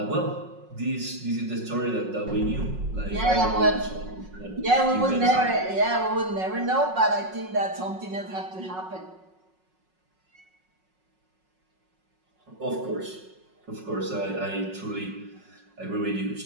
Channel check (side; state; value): left; late; 5.4 ms